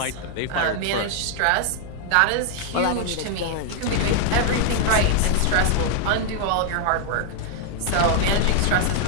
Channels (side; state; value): both; different; correlation 0.00